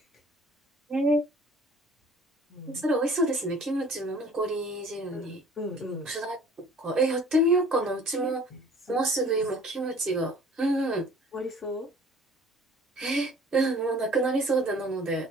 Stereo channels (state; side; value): normal; both; correlation 0.50